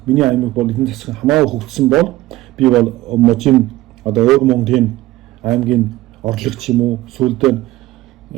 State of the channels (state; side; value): quieter; left; 17.2 dB